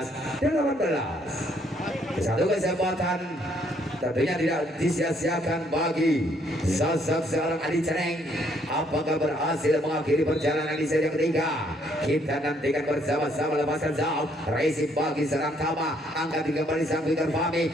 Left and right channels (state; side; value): normal; both; correlation 0.68